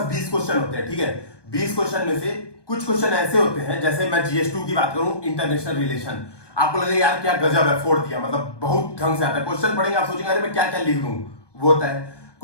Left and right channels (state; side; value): late; right; 1.2 ms